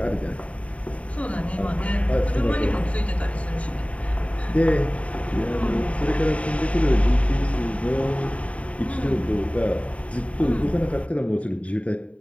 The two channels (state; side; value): late; right; 0.065 ms